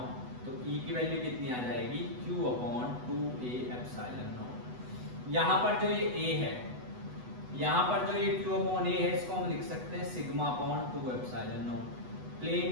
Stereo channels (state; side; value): late; left; 8.1 ms